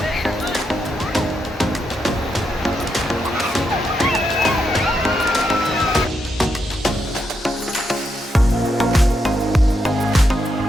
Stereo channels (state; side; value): normal; both; correlation 0.82